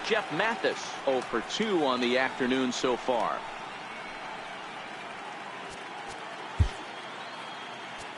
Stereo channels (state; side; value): identical; both; correlation 1.00